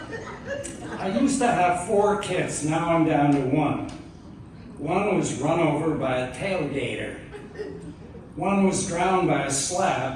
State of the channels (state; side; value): identical; both; correlation 1.00